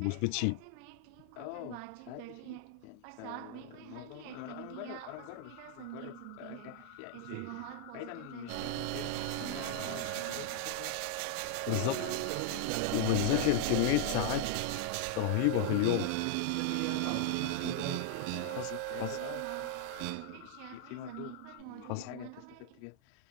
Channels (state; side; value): different; both; correlation 0.00